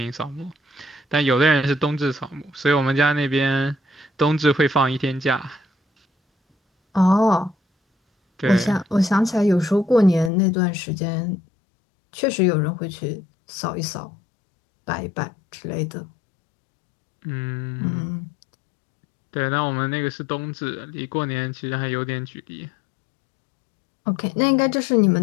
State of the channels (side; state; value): right; drops out; at 10.3 s